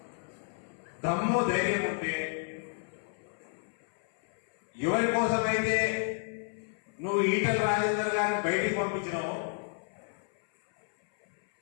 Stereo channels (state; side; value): silent; right; 57 dB below the other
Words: దమ్ము ధైర్యం ఉంటే, ఎవరి కోసమైతే నువ్వు ఈటెల రాజేందర్ గారిని బయటికి పంపించినావు